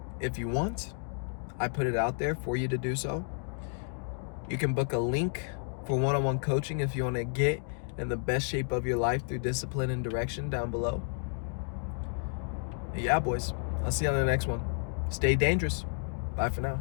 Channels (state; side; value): silent; right; 57 dB below the other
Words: if you want. I put it out there for you to do so. You can book a link for one-on-one coaching if you want to get in the best shape of your life through discipline and direction down below. And yeah, boys, I'll see you on the next one. Stay dangerous. Bye for now.